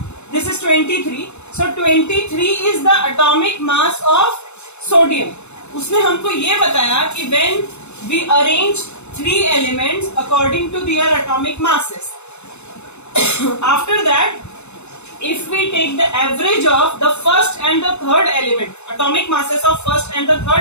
this is 23। So 23 is the atomic mass of sodium. उसने हमको ये बताया कि when we arrange 3 elements according to their atomic masses, after that if we take the average of the first and the third element, atomic masses of first and the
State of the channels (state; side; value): late; right; 0.82 ms